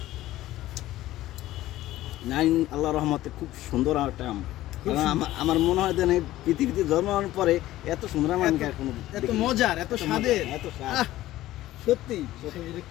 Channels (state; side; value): quieter; right; 15.4 dB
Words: নাইন আল্লাহর রহমতে খুব সুন্দর একটা আম। আমার মনে হয় যে পৃথিবীতে জন্মানোর পরে এত সুন্দর আম আমি এত মজার, এত স্বাদের, এত স্বাদ, সত্যি